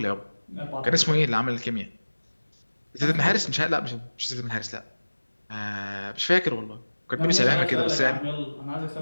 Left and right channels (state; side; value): inverted; both; correlation -1.00